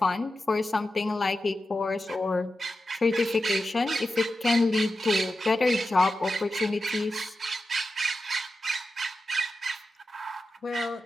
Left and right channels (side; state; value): both; normal; correlation 0.91